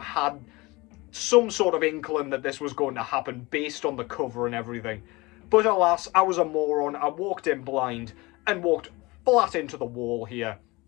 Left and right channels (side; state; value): right; quieter; 23.0 dB